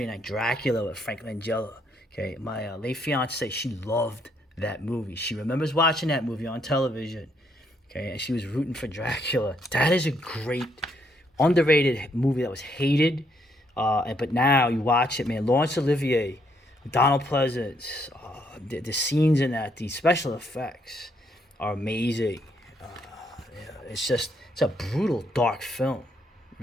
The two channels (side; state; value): both; normal; correlation 0.73